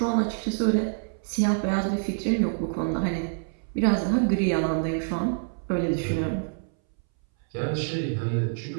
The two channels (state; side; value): silent; left; 61 dB below the other